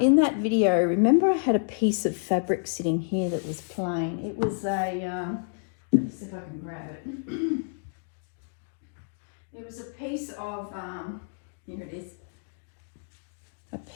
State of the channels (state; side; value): silent; right; digital silence